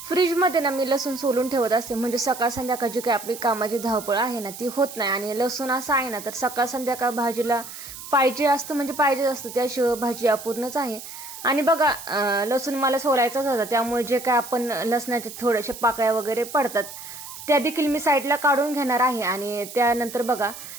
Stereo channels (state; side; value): noise; right; hiss, 12 dB below the sound